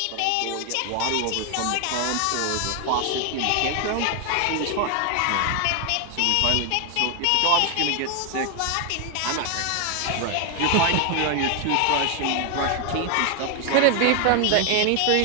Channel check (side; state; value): both; different; correlation 0.01